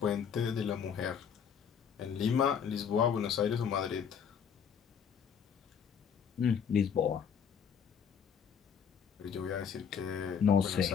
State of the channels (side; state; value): right; quieter; 7.3 dB